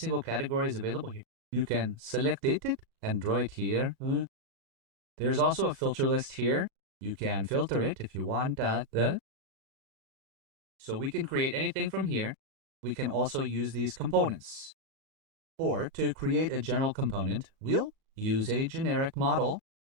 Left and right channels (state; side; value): late; left; 37 ms